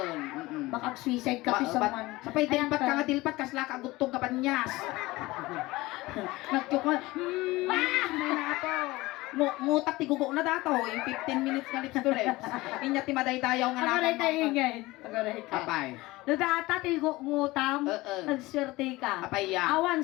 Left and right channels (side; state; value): right; quieter; 20.1 dB